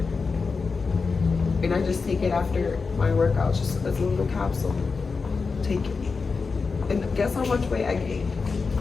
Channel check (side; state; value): right; quieter; 4.7 dB